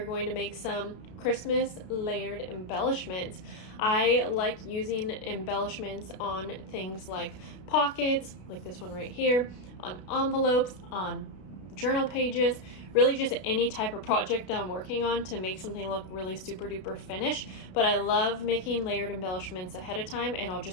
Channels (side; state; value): right; late; 32 ms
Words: going to make some Christmas layered embellishments. I like using embellishments on things like pockets, like this one right here, on envelopes, on journal pages, really just any type of project that I'm working on to make something look really super duper finished. But I love making layered embellishments ahead of time, and I'll